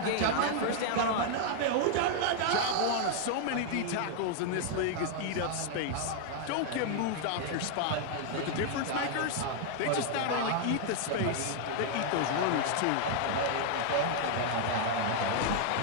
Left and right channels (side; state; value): both; different; correlation 0.00